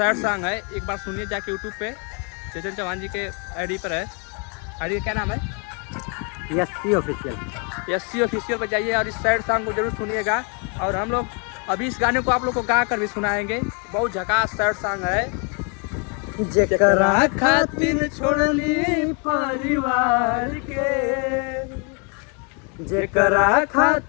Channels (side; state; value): right; quieter; 36.1 dB